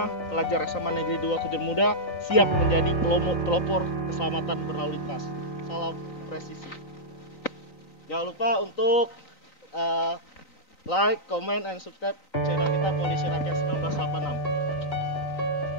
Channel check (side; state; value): right; late; 3.9 ms